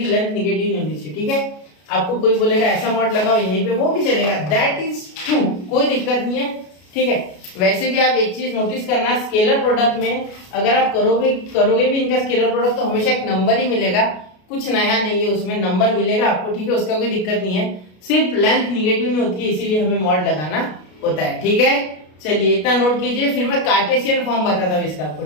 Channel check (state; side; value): late; right; 33 ms